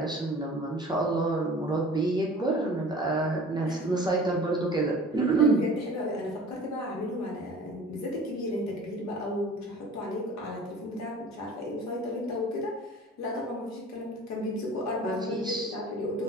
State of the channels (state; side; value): normal; both; correlation 0.43